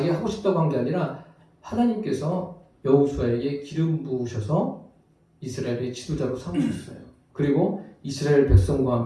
하고 싶다고 한 게 아니라 하나님께서 여호수아에게 기름 부으셔서 이스라엘의 지도자로 삼으셨어요. 그리고 이스라엘 백성과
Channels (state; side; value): identical; both; correlation 1.00